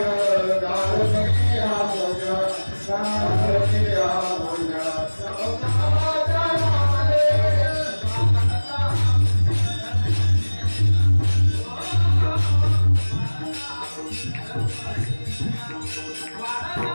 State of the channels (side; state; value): both; inverted; correlation -1.00